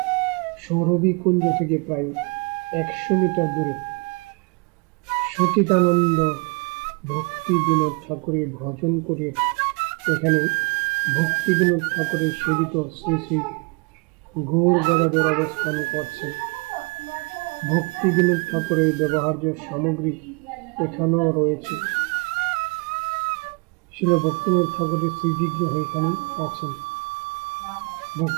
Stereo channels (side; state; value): left; quieter; 30.9 dB